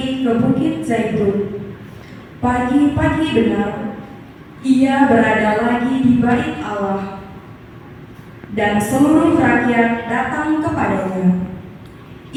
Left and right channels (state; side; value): identical; both; correlation 1.00